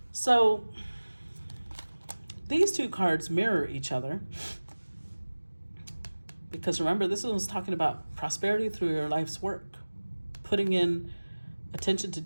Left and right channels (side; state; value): both; inverted; correlation -1.00